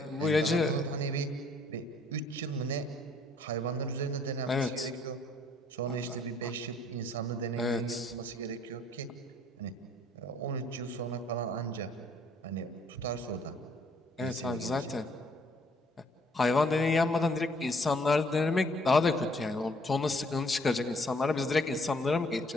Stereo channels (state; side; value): normal; both; correlation 0.63